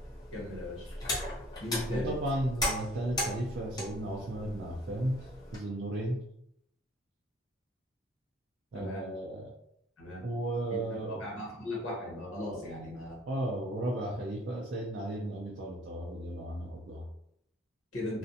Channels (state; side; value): normal; both; correlation 0.56